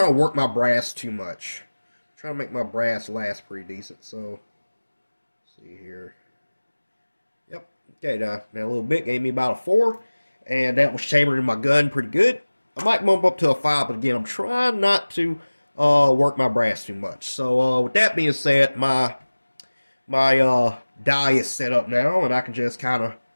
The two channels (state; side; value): inverted; both; correlation -1.00